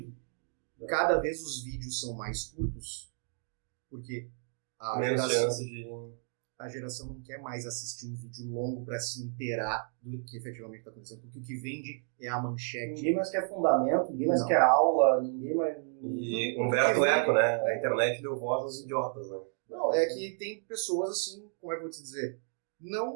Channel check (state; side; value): silent; left; 56 dB below the other